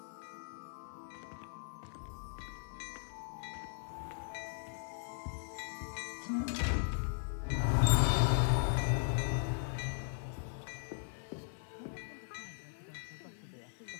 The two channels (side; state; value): right; silent; 52 dB below the other